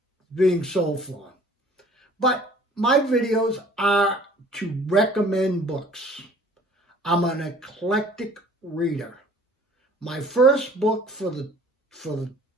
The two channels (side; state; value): both; normal; correlation 0.52